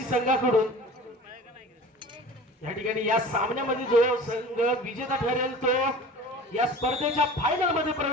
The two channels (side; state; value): both; normal; correlation 0.40